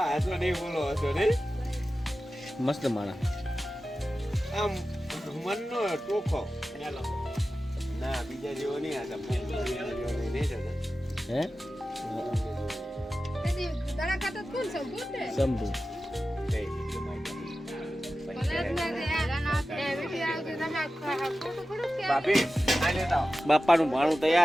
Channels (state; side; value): normal; both; correlation 0.94